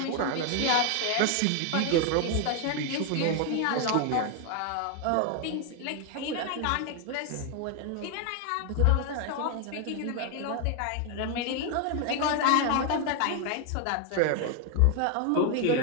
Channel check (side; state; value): both; different; correlation 0.01